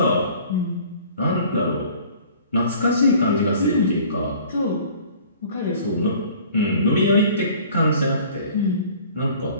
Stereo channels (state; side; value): inverted; both; correlation -0.50